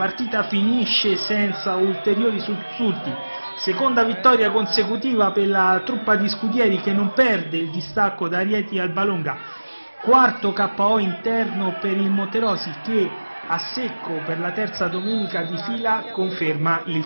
finisce senza ulteriori sussulti. Seconda vittoria consecutiva per la truppa di Scudieri che non perde il distacco da Rieti al Balonga. Quarto KO interno per il Monterosi che a secco per la terza domenica di fila conferma il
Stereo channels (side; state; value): both; inverted; correlation -1.00